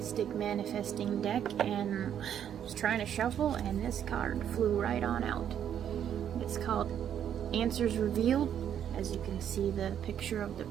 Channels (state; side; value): quieter; left; 9.5 dB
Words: Manifesting deck and was trying to shuffle, and this card flew right on out. It's called Answers Revealed. As you can see the picture of the